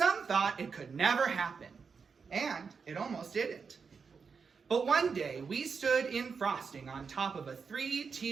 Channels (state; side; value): quieter; left; 5.5 dB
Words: thought it could never happen, and it almost didn't. But one day, we stood in frosting on top of a